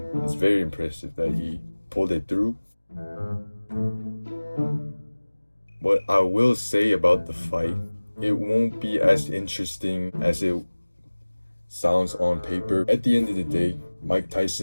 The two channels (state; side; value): inverted; both; correlation -1.00